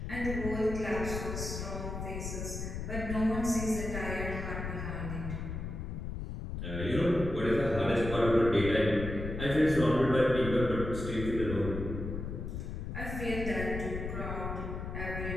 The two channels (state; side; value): noise; left; rumble, 5 dB below the sound